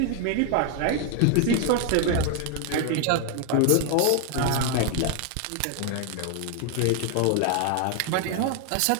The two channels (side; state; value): both; different; correlation 0.00